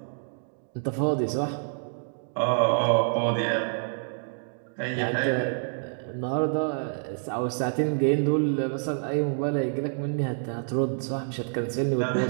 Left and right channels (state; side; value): silent; left; digital silence